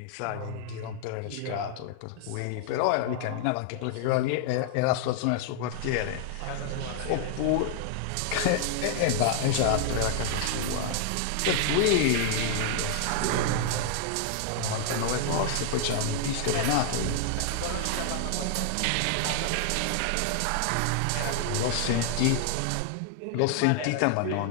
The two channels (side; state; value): both; different; correlation -0.01